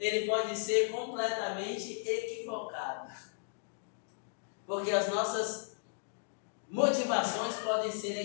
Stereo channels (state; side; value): silent; right; digital silence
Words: pode ser completamente equivocado. Porque as nossas motivações podem ser